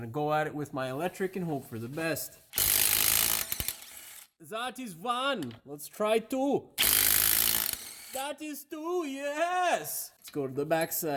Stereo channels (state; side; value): identical; both; correlation 1.00